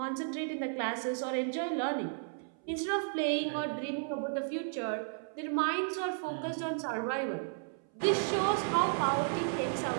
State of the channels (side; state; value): left; silent; 55 dB below the other